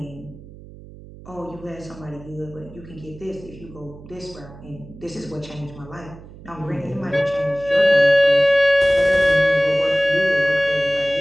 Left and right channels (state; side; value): noise; right; hum, 18 dB below the sound